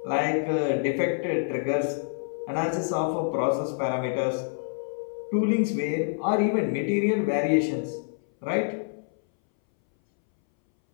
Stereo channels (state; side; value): silent; right; 60 dB below the other